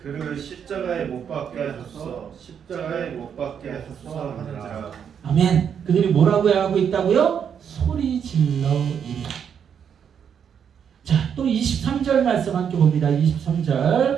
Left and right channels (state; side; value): quieter; left; 7.8 dB